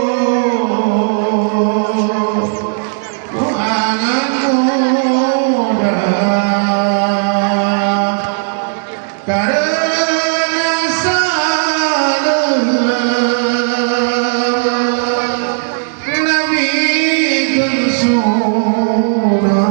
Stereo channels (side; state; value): left; silent; digital silence